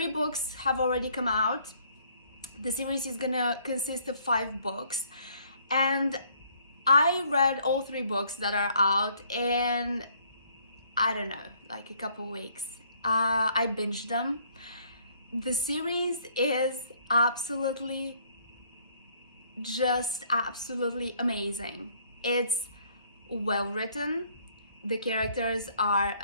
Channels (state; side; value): inverted; both; correlation -0.63